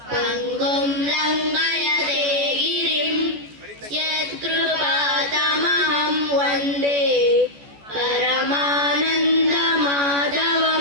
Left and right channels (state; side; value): late; left; 14 ms